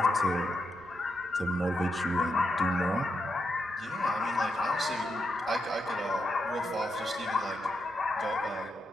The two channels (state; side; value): normal; both; correlation 0.84